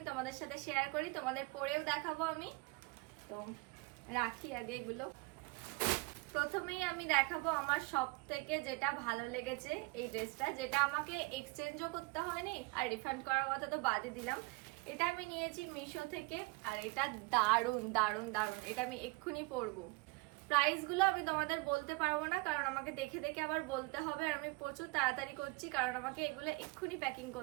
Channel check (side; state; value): left; quieter; 26.3 dB